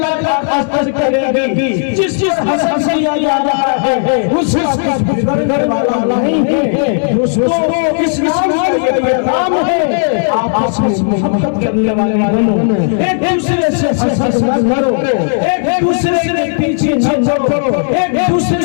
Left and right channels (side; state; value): right; silent; digital silence